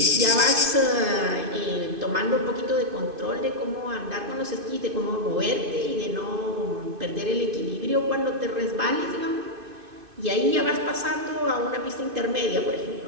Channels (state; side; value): late; left; 2.5 ms